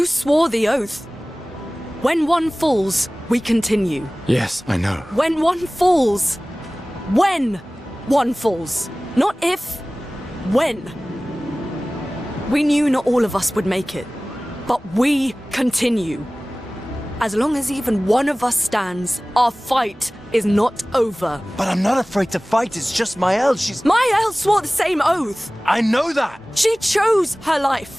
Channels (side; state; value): both; normal; correlation 0.98